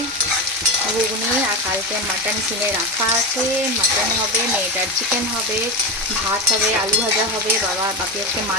ঘুগনি, আর কালকে মাটন কিনে রাখা আছে, মাটন হবে, মেয়েটার চিকেন হবে, ভাত হবে, আলু ভাজা হবে, বাপি আজকে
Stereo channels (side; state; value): both; normal; correlation 0.17